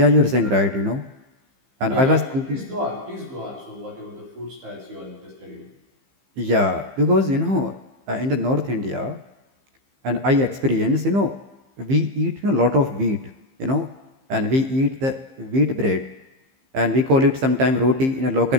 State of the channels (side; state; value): left; late; 15 ms